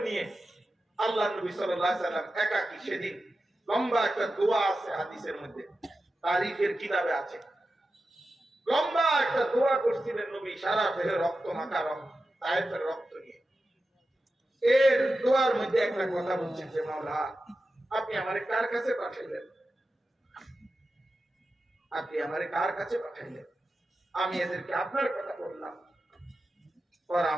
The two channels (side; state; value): both; normal; correlation 0.92